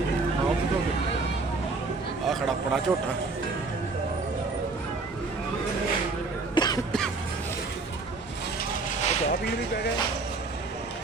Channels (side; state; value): left; quieter; 3.8 dB